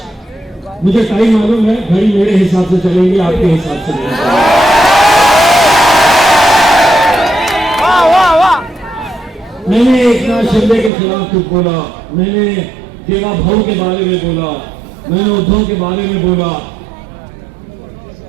मुझे टाइम मालूम है, घड़ी मेरे हिसाब से चलेंगे, आपके हिसाब से नहीं। मैंने एक ना शिंदे के खिलाफ कुछ बोला, मैंने देवा भाऊ के बारे में बोला, मैंने उद्धव के बारे में बोला,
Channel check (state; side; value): drops out; left; at 10.9 s